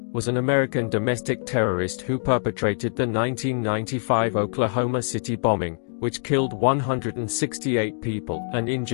was an American domestic terrorist who perpetrated the 1995 Oklahoma City bombing, which killed 168 people and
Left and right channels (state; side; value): silent; right; digital silence